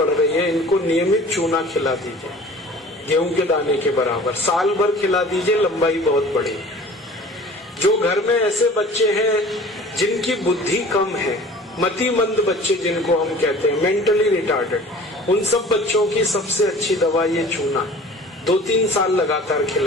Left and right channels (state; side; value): normal; both; correlation 0.45